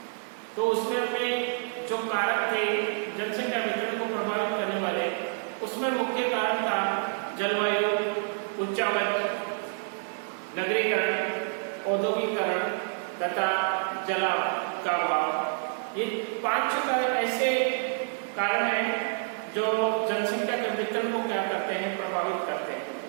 तो उसमें अपने जो कारक थे जनसंख्या वितरण को प्रभावित करने वाले, उसमें मुख्य कारण था जलवायु, उच्चावच, नगरीकरण, औद्योगिकरण तथा जलाव का अभाव। ये 5 ऐसे कारण हैं जो जनसंख्या के वितरण को क्या करते हैं, प्रभावित करते हैं।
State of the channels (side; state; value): left; silent; 59 dB below the other